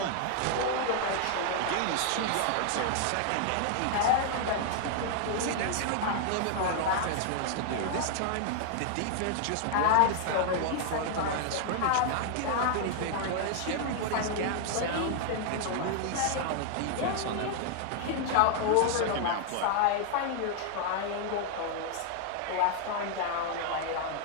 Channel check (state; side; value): different; both; correlation 0.00